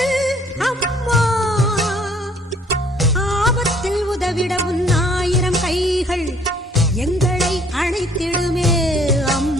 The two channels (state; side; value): normal; both; correlation 0.60